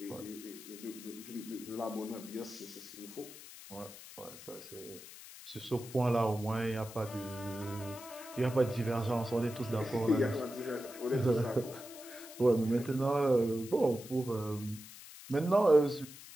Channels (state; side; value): noise; left; hiss, 15 dB below the sound